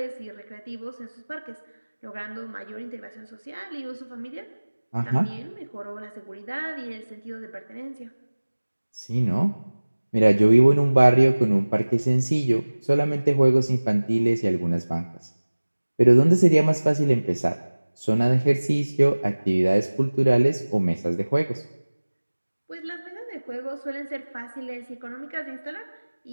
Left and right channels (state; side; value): inverted; both; correlation -1.00